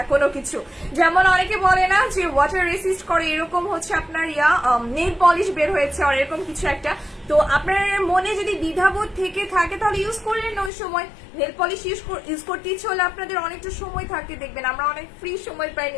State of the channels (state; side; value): drops out; right; at 10.7 s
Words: কোনো কিছু। যেমন অনেকে বলে না যে ওয়াটার রেসিস্ট করে, এরকম হচ্ছে আপনার নেল পলিশ বের হয়েছে আর এরকম কিছু একটা, তো আপনার মনে যদি দ্বিধাবোধ থেকে থাকে তাহলে ইউজ করলেন না। ওই সময় নেল পলিশ ইউজ করতে ইচ্ছে হলে আপনাদের অনেকটা সময় থাকে, দেখবেন আমরা অনেক ফ্রি সময় পাই